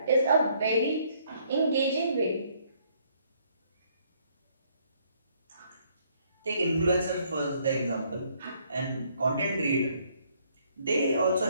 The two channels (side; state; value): both; inverted; correlation -0.67